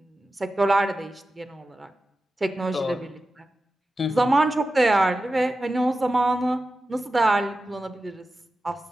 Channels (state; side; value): normal; both; correlation 0.93